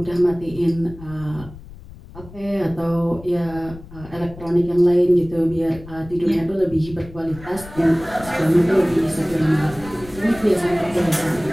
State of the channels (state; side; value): noise; left; rumble, 17 dB below the sound